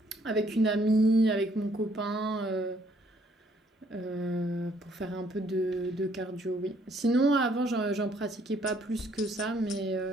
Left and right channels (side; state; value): both; normal; correlation 0.66